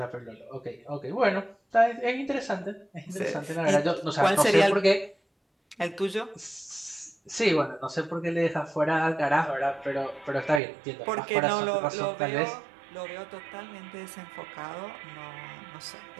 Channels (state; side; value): drops out; left; at 10.6 s